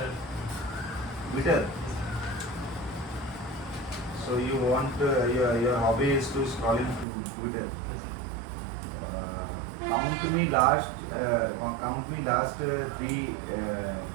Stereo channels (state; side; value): drops out; left; at 7.1 s